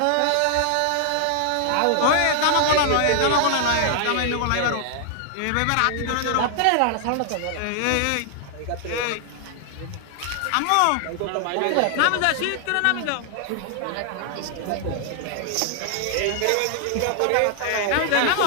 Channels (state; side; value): different; both; correlation 0.00